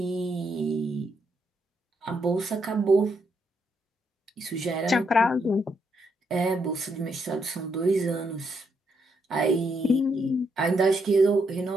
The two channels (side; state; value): both; normal; correlation 0.77